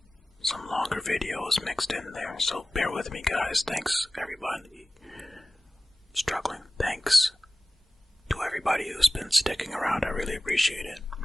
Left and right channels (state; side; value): normal; both; correlation 0.96